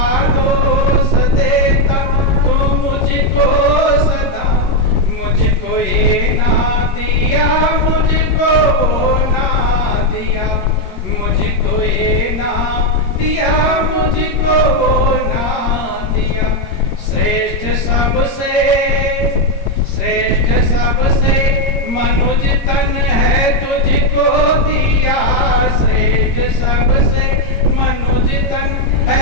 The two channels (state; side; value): late; right; 21 ms